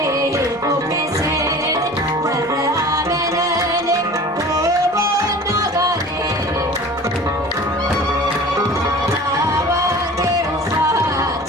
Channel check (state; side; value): noise; right; rumble, 28 dB below the sound